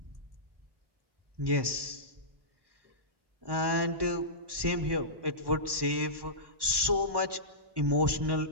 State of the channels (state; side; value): late; left; 1.1 ms